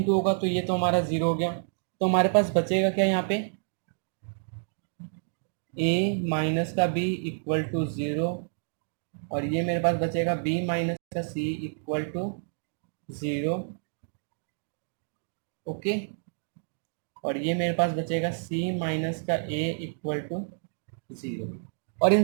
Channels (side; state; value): left; silent; digital silence